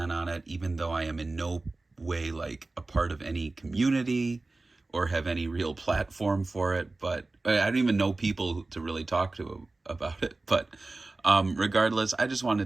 on it, even though I am in no way like a part of any community or have any real platform for it. But I don't even know people to really talk to about it. But regardless, I just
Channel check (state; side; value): quieter; left; 3.2 dB